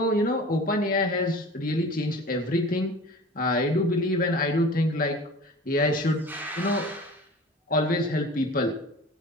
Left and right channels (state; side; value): normal; both; correlation 0.40